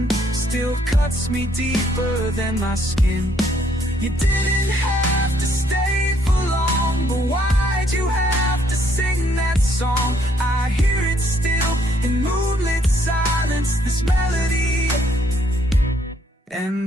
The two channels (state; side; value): normal; both; correlation 0.68